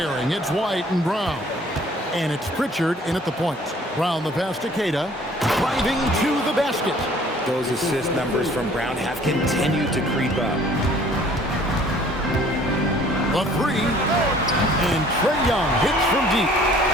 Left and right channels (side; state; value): both; normal; correlation 0.55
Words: it's White and Brown. And it's Pritchard in at the point. Brown the pass to Kata. Driving to the basket. Those assist numbers from Brown have continued to creep up. The three. And Trae Young hits from deep.